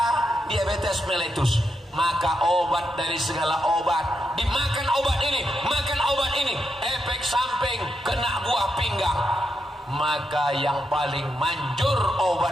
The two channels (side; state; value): both; normal; correlation 0.84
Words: diabetes mellitus. Maka obat dari segala obat, dimakan obat ini, makan obat ini, efek samping kena buah pinggang. Maka yang paling manjur